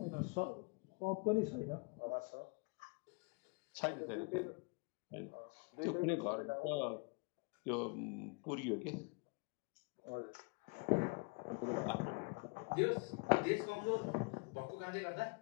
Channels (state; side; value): quieter; right; 30.8 dB